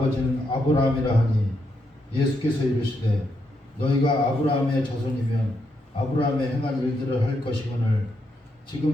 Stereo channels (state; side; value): normal; both; correlation 0.80